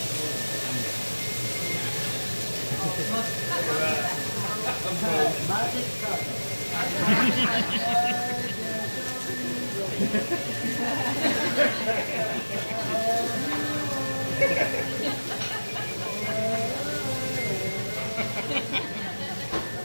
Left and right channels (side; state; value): both; inverted; correlation -1.00